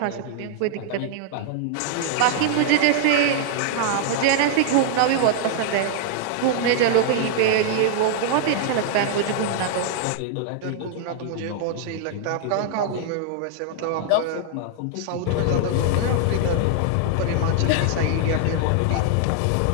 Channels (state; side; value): different; both; correlation -0.01